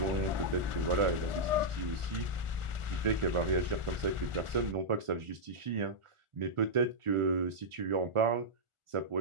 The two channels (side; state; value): left; late; 1.4 ms